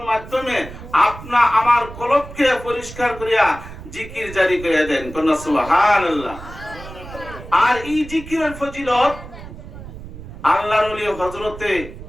মাধ্যমে আপনা আমার কলবকে পরিষ্কার করিয়া জিকির জারি করে দেন। কোন সুবহানাল্লাহ। আর এই জিকিরের ফজিলত আল্লাহর ওলি হযরতে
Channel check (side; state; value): right; noise; rumble, 14 dB below the sound